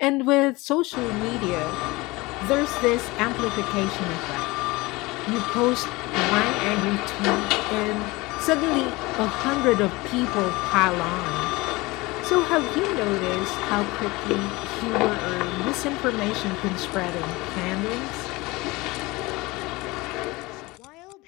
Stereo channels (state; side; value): quieter; right; 22.2 dB